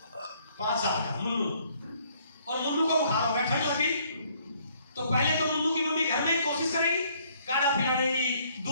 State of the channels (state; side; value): inverted; both; correlation -0.64